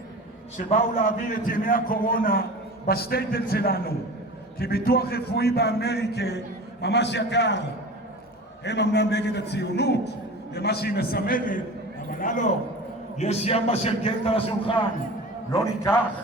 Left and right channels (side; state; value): both; normal; correlation 0.35